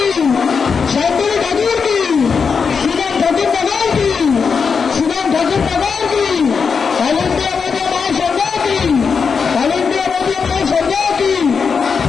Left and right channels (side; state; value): right; quieter; 5.7 dB